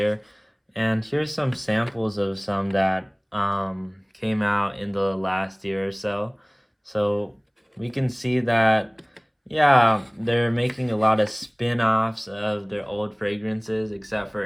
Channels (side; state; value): both; identical; correlation 1.00